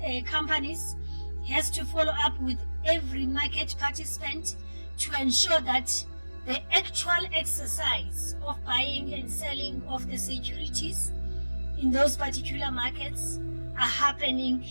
companies, has to follow up with every market participant to ensure that the actual exercise of buying and selling of the securities in those particular markets are happening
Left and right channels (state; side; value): inverted; both; correlation -1.00